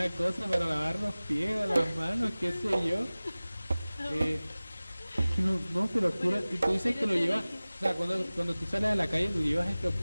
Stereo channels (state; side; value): inverted; both; correlation -0.99